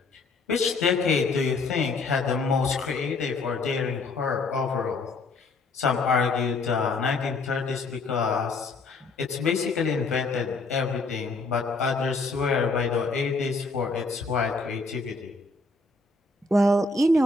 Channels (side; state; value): right; quieter; 3.6 dB